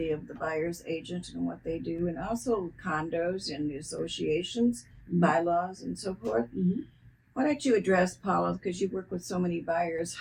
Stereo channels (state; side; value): identical; both; correlation 1.00